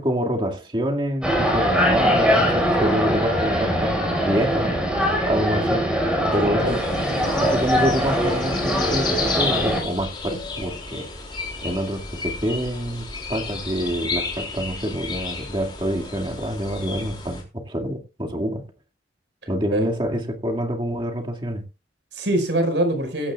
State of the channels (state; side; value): normal; both; correlation 0.59